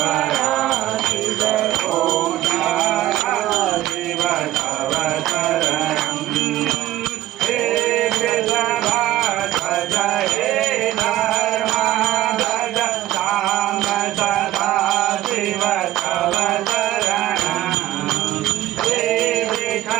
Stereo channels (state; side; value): quieter; left; 14.8 dB